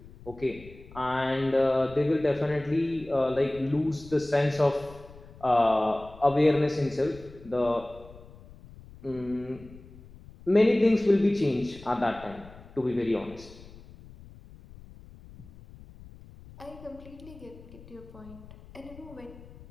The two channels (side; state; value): left; noise; rumble, 20 dB below the sound